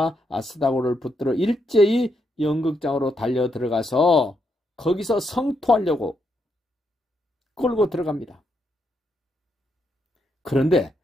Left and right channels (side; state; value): both; normal; correlation 0.79